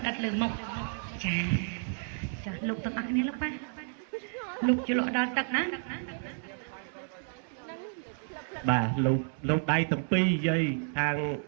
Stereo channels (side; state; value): left; silent; digital silence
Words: ដិតលើមុខចាចាលោកទាំងអស់គ្នាលោកប៉ាលោកជលក់ដល់ទឹកណា បាទលោកដៃទាំងពីរយាយខាង